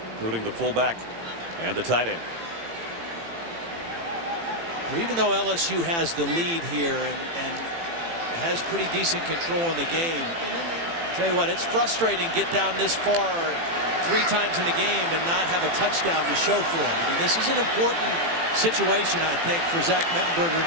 including the fullback and the tight end. Well, even though LSU has the lead here and has pretty decent control in the game, tell you what, it's frustrating to get down this far 3 times in the game and not have a touchdown to show for it. I mean, this is an important situation, I think, for Zach Mettenberger in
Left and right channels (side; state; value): left; late; 18 ms